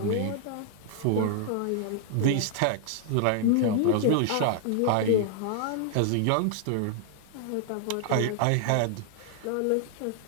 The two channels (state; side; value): different; both; correlation 0.00